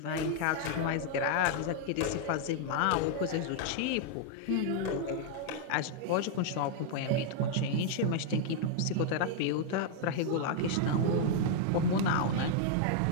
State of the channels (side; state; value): both; different; correlation 0.00